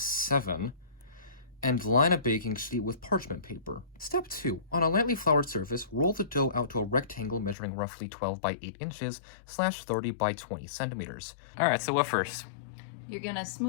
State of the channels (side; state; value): right; drops out; at 7.6 s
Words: 7 and line a baking sheet with parchment paper. Step 2. On a lightly floured surface, roll the dough out to a rectangle measuring roughly 12 by 8 inches / 30 by 20 centimeters. Alright, so what first? You're gonna